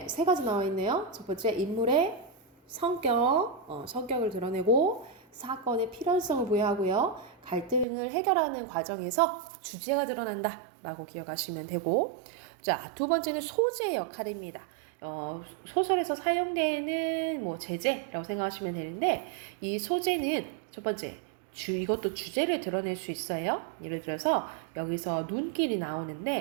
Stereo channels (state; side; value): drops out; left; at 7.9 s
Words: 세 가지 나와 있네요. 첫 번째, 인물의 성격을 드러내고 사건의 필연성을 부여하고요. 갈등을 해결하는 과정에서 주제가 드러난다 라고 기억하시면 되고, 자, 두 번째는 소재의 역할입니다. 소설에서 사용되는 뭐 제재라고 생각하시면 되는데, 이 소재는 첫 번째, 이것도 주제를 드러낼 수 있어요. 예를 들어서 여기서 눈길이